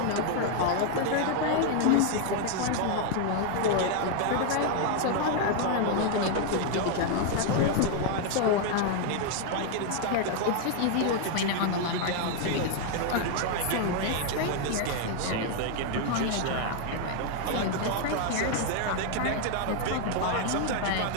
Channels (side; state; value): both; different; correlation 0.00